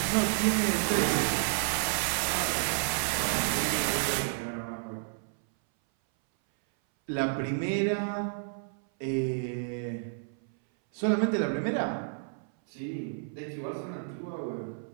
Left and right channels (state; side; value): silent; left; 57 dB below the other